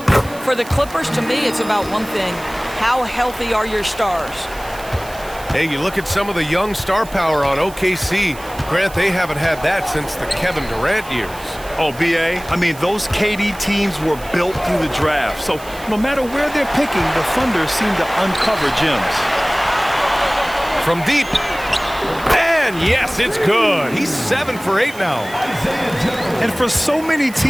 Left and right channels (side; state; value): right; noise; hiss, 18 dB below the sound